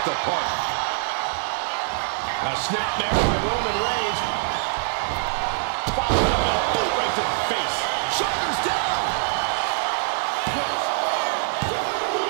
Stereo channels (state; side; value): silent; left; digital silence